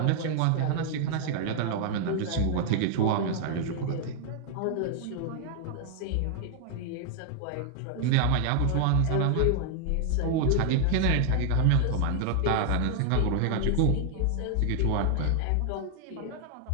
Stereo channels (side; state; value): both; different; correlation 0.00